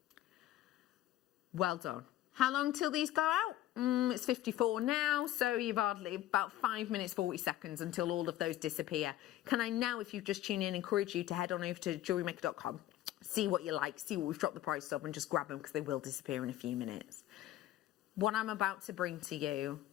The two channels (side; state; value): right; quieter; 13.8 dB